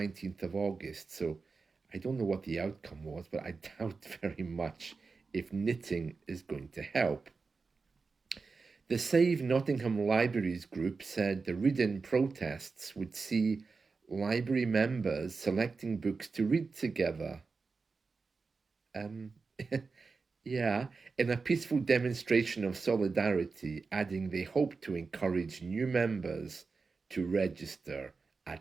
of August. So I don't know what the outcome was, but I doubt very much if knitting is going to help. The Save Nottingham Libraries group said the read-in protests would see library members selecting books to read together. Yeah, in a peaceful demonstration of solidarity, adding they hope to encourage new members to register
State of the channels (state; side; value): quieter; left; 4.5 dB